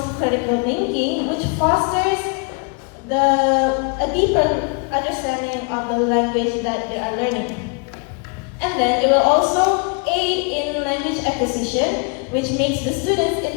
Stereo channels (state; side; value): quieter; right; 34.4 dB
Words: critical thinking, which fosters a deeper understanding of the language that they are learning. And then it will also aid in language acquisition, which makes the students